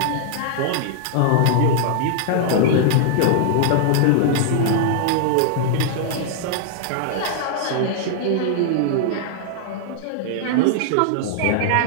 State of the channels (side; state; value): both; different; correlation -0.01